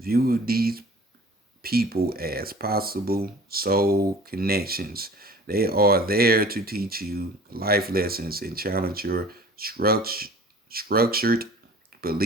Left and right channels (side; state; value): both; normal; correlation 0.45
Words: these people as possible soul connections. They are there to teach you life lessons and challenge your structured